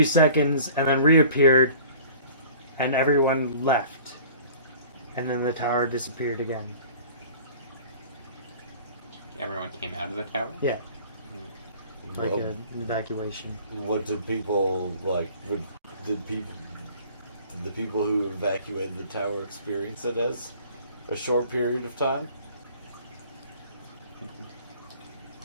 seconds and then reappeared, and everyone left, and then the tower disappeared again. Everyone came out of the tower? Yeah, like Well, an evacuation. what did people like? Did the people who evacuated the tower experience it as a short period of time?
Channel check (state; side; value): inverted; both; correlation -0.48